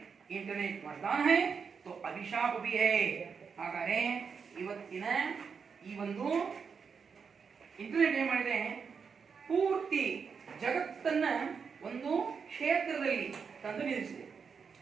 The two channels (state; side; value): quieter; left; 6.0 dB